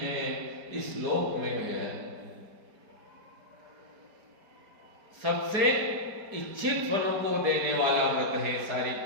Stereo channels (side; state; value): left; late; 4.8 ms